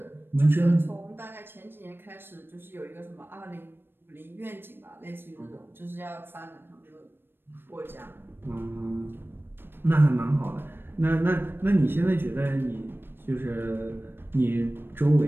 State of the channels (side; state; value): left; late; 0.10 ms